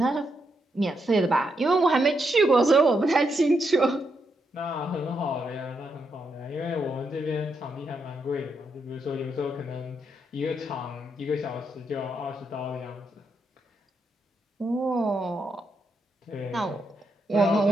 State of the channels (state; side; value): normal; both; correlation 0.80